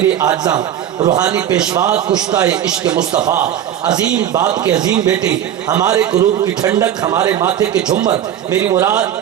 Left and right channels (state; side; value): quieter; left; 10.4 dB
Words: عاجزاں، روحانی پیشوا، کشتہ عشق مصطفیٰ، عظیم باپ کے عظیم بیٹے، ہمارے قلوب کی ٹھنڈک، ہمارے ماتھے کے جھمر، میری